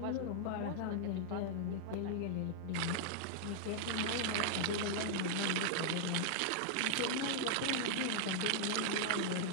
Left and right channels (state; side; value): different; both; correlation -0.01